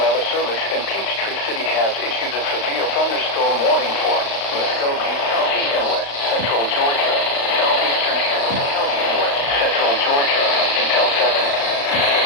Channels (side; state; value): right; late; 35 ms